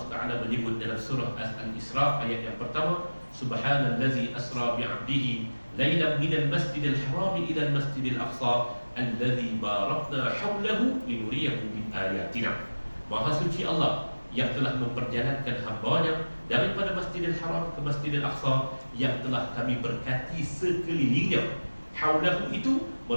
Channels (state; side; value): inverted; both; correlation -1.00